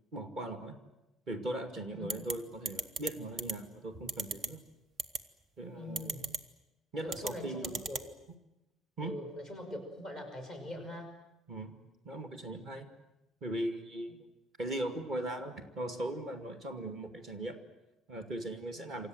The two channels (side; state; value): both; normal; correlation 0.59